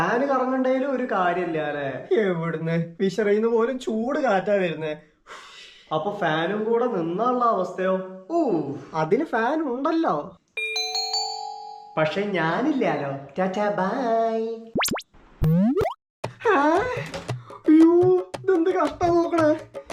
കറങ്ങണ്ടേലും ഒരു കാര്യമില്ല അല്ലേ? എവിടുന്ന് വിശറിയുന്ന പോലും ചൂട് കാറ്റാ വരുന്നേ. അപ്പൊ ഫാനും കൂടെ നിന്നുള്ള അവസ്ഥയോ? അതിന് ഫാൻ ഉണ്ടല്ലോ. പക്ഷെ ഞാനില്ലാലോ. Tata bye. അയ്യോ, ഇതെന്ത് കഷ്ടം നോക്കണേ.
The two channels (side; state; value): both; identical; correlation 1.00